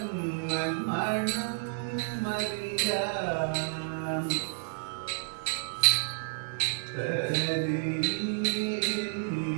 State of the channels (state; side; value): silent; left; digital silence